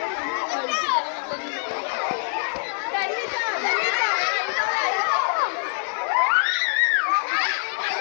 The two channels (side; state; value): right; silent; 62 dB below the other